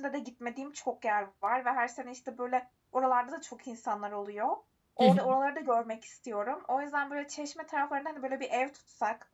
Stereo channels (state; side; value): identical; both; correlation 1.00